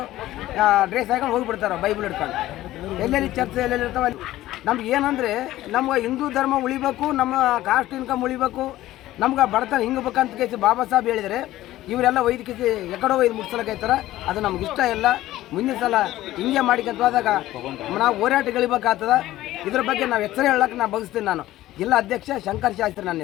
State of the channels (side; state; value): right; quieter; 15.3 dB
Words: ಡ್ರೆಸ್ ಹಾಕೊಂಡು ಹೋಗಿಬಿಡ್ತಾರೆ ಬೈಬಲ್ ಹಿಡ್ಕೊಂಡು. ಎಲ್ಲೆಲ್ಲಿ ಚರ್ಚೆ ಎಲ್ಲೆಲ್ಲಿ ಇರ್ತಾವೆ. ನಮ್ಗೆ ಏನಂದರೆ ನಮ್ಗೆ ಹಿಂದೂ ಧರ್ಮ ಉಳಿಬೇಕು, ನಮ್ಮ ಕಾಸ್ಟ್ ಇನ್ಕಮ್ ಉಳಿಬೇಕು, ನಮ್ಗೆ ಬಡತನ ಹಿಂಗಬೇಕಂತ ಕೇಸಿ ಬಾಬಾ ಸಾಹೇಬ್ ಹೇಳಿದರೆ ಇವರೆಲ್ಲ ಒಯ್ದಕ್ಕೆ ಎಕಡೋ ಒಯ್ದು ಮುಟ್ಸಲಕ್ಕೈತಾರ. ಅದು ನಮ್ಗೆ ಇಷ್ಟ ಇಲ್ಲ. ಮುಂದಿನ ಸಲ ಹಿಂಗೆ ಮಾಡಿಕೊಂತ ಹೋದಾಗ ನಾವು ಹೋರಾಟಗಳಿಬೇಕಾಗ್ತದೆ. ಇದ್ರ ಬಗ್ಗೆ ನಾವು ಎಚ್ಚರ ಹೇಳಕ್ಕೆ ನಾನು ಬಯಸ್ತೀನಿ. ನಾನು ಜಿಲ್ಲಾ ಅಧ್ಯಕ್ಷ ಶಂಕರ್ ಶಾಸ್ತ್ರಿ ನನ್ನ